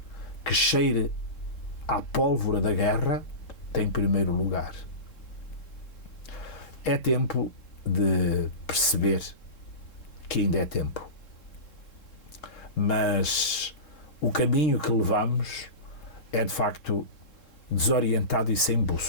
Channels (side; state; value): right; late; 3.7 ms